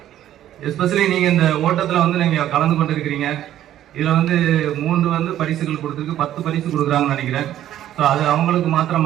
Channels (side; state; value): left; quieter; 12.1 dB